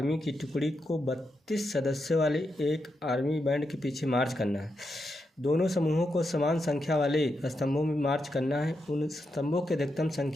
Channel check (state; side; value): normal; both; correlation 0.85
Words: की टुकड़ी को 32 सदस्यों वाले एक आर्मी बैंड के पीछे मार्च करना है। दोनों समूहों को समान संख्या वाले स्तंभों में मार्च करना है। उन स्तंभों की अधिकतम